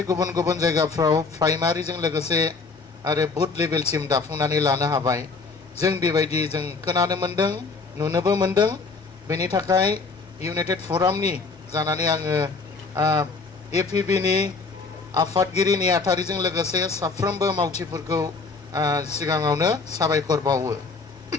गुबुन गुबुन जायगाफ्राव प्राइमारिजों लोगोसे आरो बुथ लेभेलसिम दाफुंनानै लानो हाबाय। जों बेबायदि जों खोनानो मोनदों, नुनोबो मोनदों। बेनि थाखाय इउनाइटेड फरामनि जानानै आङो APB-नि आफादगिरि नेहाथारिजों लोगोसे साफ्रोमबो मावथिफोरखौ सिगाङावनो साबायखर बावो।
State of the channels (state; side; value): quieter; right; 4.3 dB